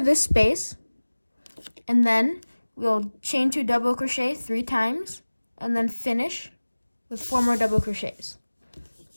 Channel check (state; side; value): inverted; both; correlation -1.00